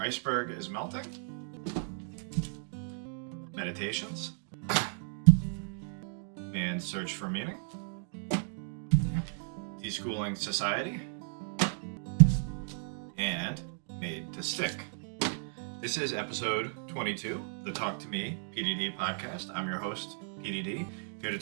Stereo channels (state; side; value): silent; left; 55 dB below the other